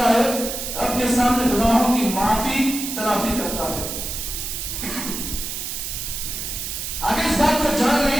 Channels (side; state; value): right; noise; hiss, 5 dB below the sound